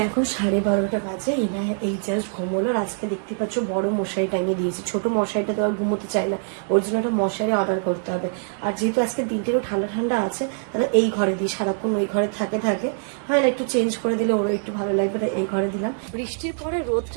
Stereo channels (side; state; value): left; silent; digital silence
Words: এখন 12:30 বাজে। ইনায়া এই জাস্ট ঘুমোলো। আজকে দেখতে পাচ্ছ বড় মশারি টাঙিয়ে দিয়েছি, ছোট মশারিটা তো আর ঘুমোতে চাই না, ওর জন্য একটা মশারি অর্ডার করতে হবে। আর যেহেতু আজকে দিনটিরও ঠান্ডা ঠান্ডা আছে, তাহলে এই ঘরে দিই, সারাক্ষণ ওই ঘরে থাকে হয় না, একটু চেঞ্জ করে দিলে ওরও একটু ভালো লাগবে, তাই এই ঘরে দিলাম। বৃষ্টির পরে